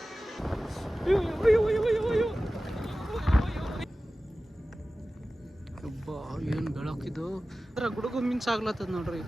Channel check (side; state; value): both; normal; correlation 0.96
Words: ಏನು ಬೆಳಕಿದು ಗುಡುಗು ಮಿಂಚ್ ಆಗ್ಲತ್ತದ ನೋಡ್ರಿ